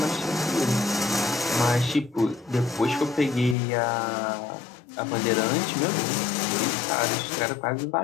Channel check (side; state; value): right; drops out; at 3.6 s